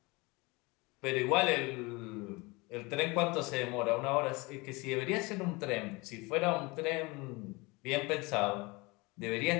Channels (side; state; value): right; quieter; 25.2 dB